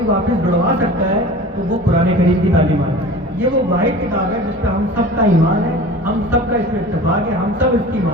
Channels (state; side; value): normal; both; correlation 0.39